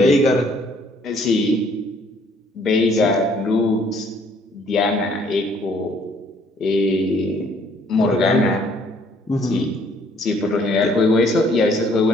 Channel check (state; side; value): normal; both; correlation 0.62